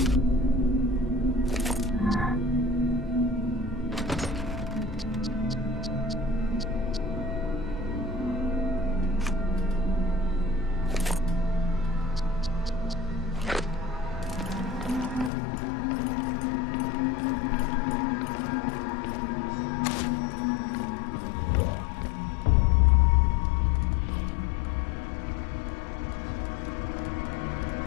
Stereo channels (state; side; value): drops out; right; at 15.3 s